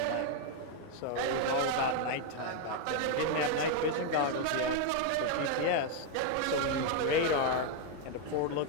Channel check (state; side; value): different; both; correlation 0.01